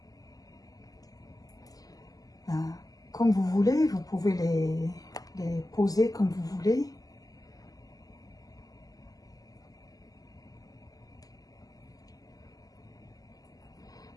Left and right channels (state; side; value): late; right; 0.17 ms